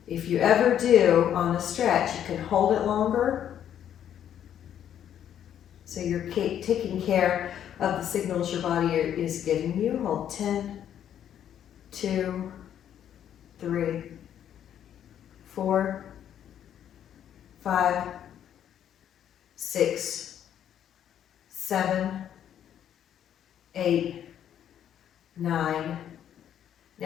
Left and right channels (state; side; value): quieter; right; 9.9 dB